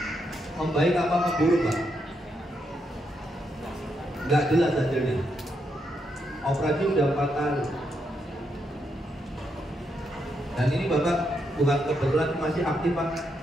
Membaik apa memburuk Pak? Nggak jelas hasilnya. Operasi udah 4 kali. Dan ini Bapak bukan kebetulan masih aktif Pak,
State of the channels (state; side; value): normal; both; correlation 0.80